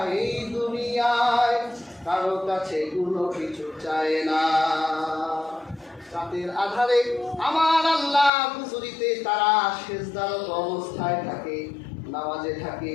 এই দুনিয়ায় কারো কাছে কোনো কিছু চায় না। রাতের আধারে আমার আল্লাহ হুজুরিতে তারা সিজদারত অবস্থায় থাকে, নামাজে থাকে।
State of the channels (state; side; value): drops out; right; at 8.3 s